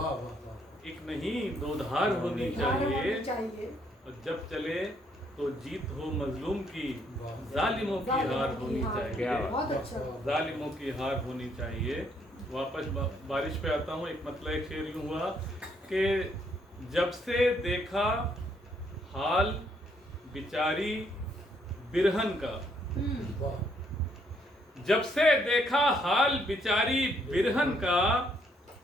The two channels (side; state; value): both; normal; correlation 0.70